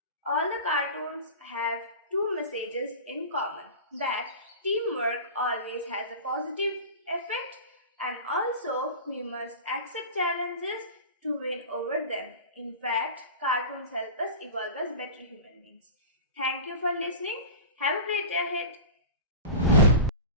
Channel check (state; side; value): inverted; both; correlation -0.32